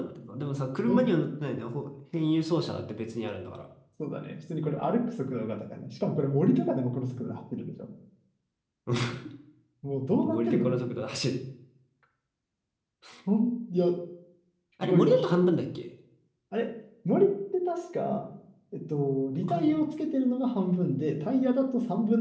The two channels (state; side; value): identical; both; correlation 1.00